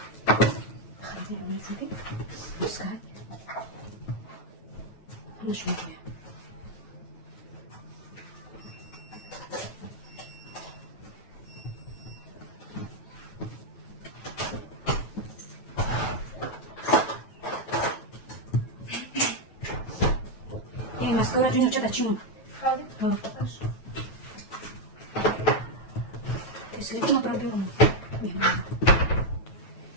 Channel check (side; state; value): right; late; 9.2 ms